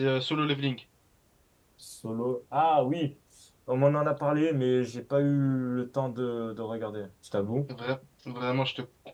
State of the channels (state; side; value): identical; both; correlation 1.00